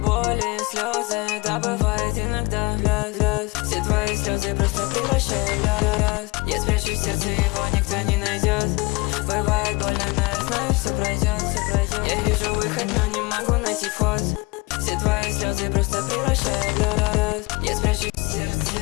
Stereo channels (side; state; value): right; quieter; 24.8 dB